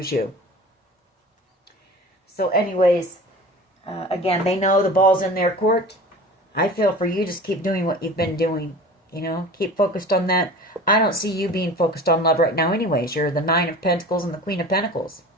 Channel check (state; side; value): normal; both; correlation 0.38